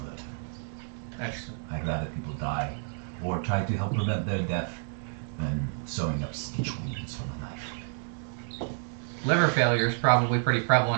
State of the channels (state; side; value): silent; left; 58 dB below the other